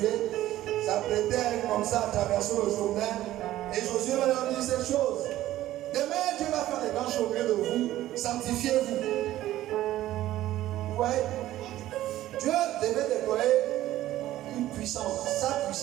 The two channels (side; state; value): left; quieter; 14.4 dB